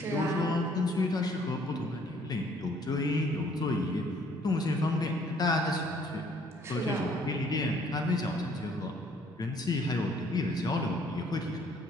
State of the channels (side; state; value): both; normal; correlation 0.61